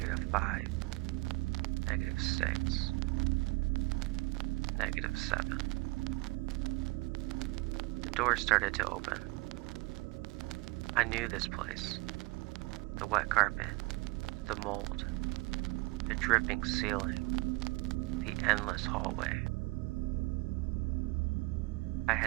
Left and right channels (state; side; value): quieter; left; 23.7 dB